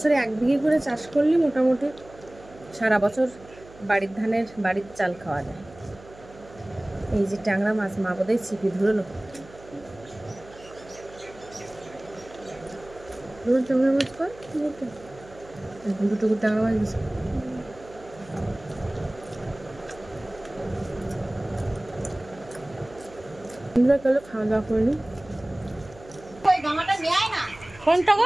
1 বিঘে করে চাষ করলে মোটামুটি সারা বছর বাড়ির ধানের বাড়ির চাল খাওয়া যায়। এই যে ট্যাংরা মাছ, মা বোধহয় ছিপি ধরলো। ট্যাংরা মাছ কর, দুটো ট্যাংরা মাছ দিচ্ছে। খাওয়া দাওয়া করিনি। কোনটা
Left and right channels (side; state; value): right; noise; hum, 21 dB below the sound